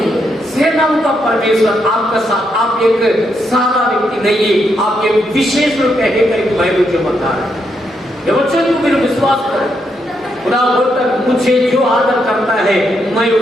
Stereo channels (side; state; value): both; normal; correlation 0.79